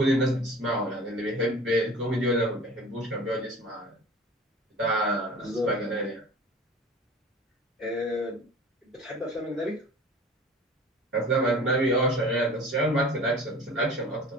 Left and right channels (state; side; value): normal; both; correlation 0.42